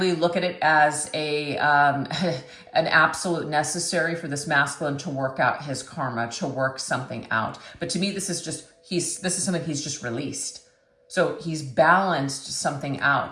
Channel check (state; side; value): identical; both; correlation 1.00